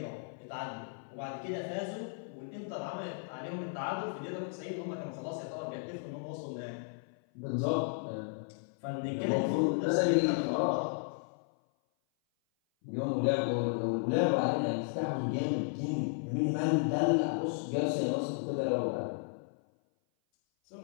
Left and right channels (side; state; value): right; silent; 55 dB below the other